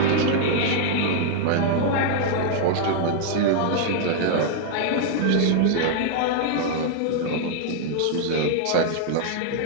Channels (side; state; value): both; different; correlation -0.01